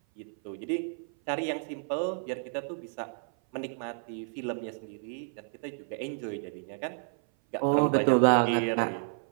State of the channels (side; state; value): left; silent; 56 dB below the other